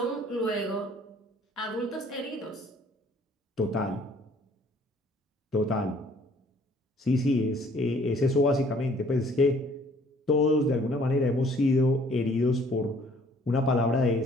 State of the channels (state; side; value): normal; both; correlation 0.58